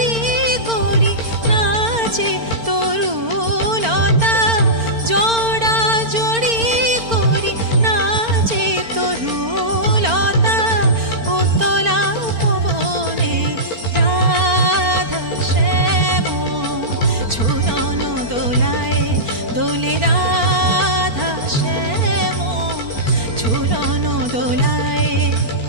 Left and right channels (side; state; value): left; late; 4.4 ms